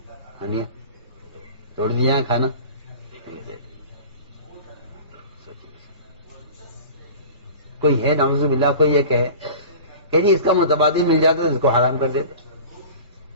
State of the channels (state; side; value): inverted; both; correlation -0.38